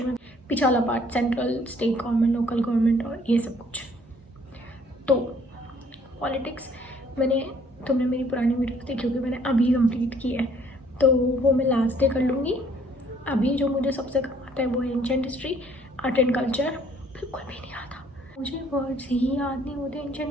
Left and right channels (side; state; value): both; normal; correlation 0.61